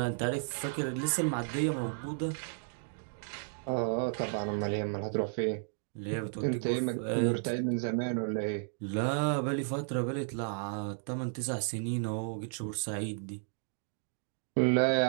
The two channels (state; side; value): silent; left; digital silence